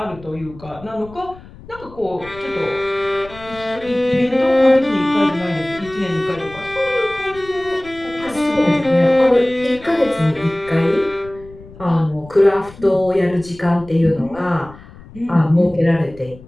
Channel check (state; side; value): noise; left; rumble, 20 dB below the sound